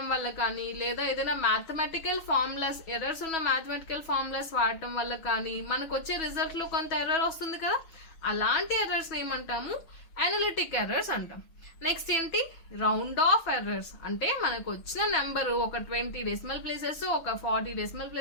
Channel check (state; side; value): late; right; 6.2 ms